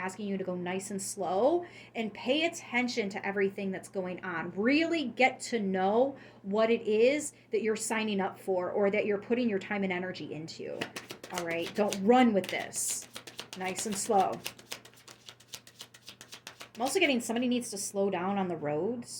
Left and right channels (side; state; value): both; identical; correlation 1.00